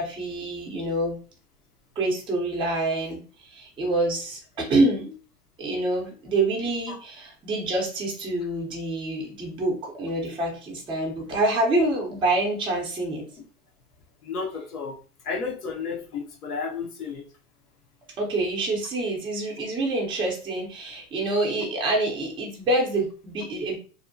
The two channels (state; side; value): normal; both; correlation 0.36